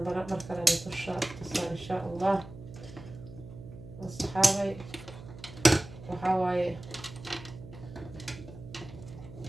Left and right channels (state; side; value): noise; right; hum, 15 dB below the sound